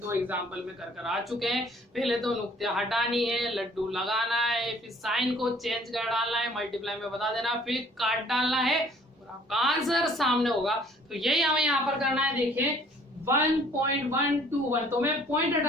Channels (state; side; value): normal; both; correlation 0.56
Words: 2 एग्जाम्पल में कर आ चुके हैं। पहले तो नुक्ते हटानी है, लड्डू लगाना है, फिर साइन को चेंज कर डालना है, मल्टीप्लाई में बता देना, फिर काट डालना है, और आपका आंसर सामने होगा। तो यही हमें यहाँ पर करना है। देखिए 1.121, तो मैं पॉइंट